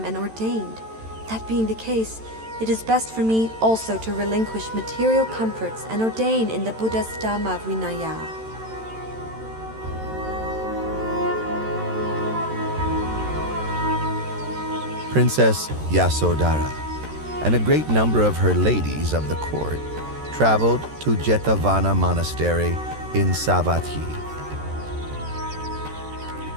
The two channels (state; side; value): late; left; 13 ms